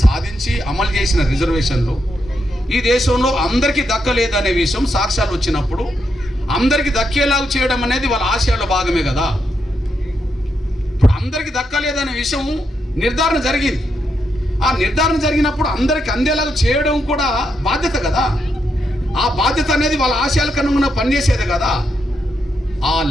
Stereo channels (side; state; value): both; normal; correlation 0.82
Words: సాధించి అమలు చేసిన రిజర్వేషన్లు ఈ దేశంలో అందరికీ దక్కలేదనే విషయం సాక్ష్యాలు వచ్చినప్పుడు అందరికీ దక్కేలాగా చేయడం అనేది వాళ్ళ ఆశయాల్లో భాగమే కదా. ఇప్పుడు అందరికీ దక్కలేదనే విషయం నిర్ధారణ జరిగింది. ఆ నిర్ధారణ జరిగినప్పుడు అందరికీ అందేలాగా చేయడం కూడా బాధ్యత కదా. ఆ బాధ్యత అనేది వాళ్ళ ఆశయాలకు అనుగుణంగా పనిచేసేది కదా.